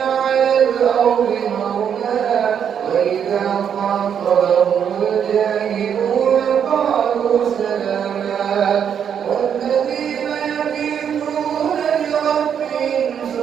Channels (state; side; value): quieter; left; 8.2 dB